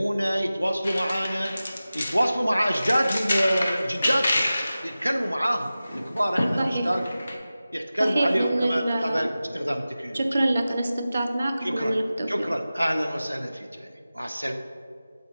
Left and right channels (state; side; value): inverted; both; correlation -0.95